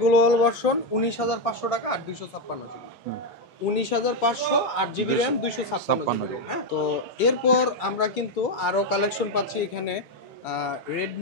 global version 19,500 টাকা, 8/256GB 19,500 8GB RAM 256GB Rome. হ্যাঁ, তো এরপর আমরা কিন্তু আরো কালেকশন পাচ্ছি এখানে।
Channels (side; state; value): both; normal; correlation 0.05